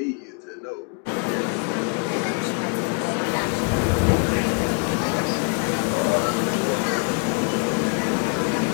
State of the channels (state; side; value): quieter; right; 35.2 dB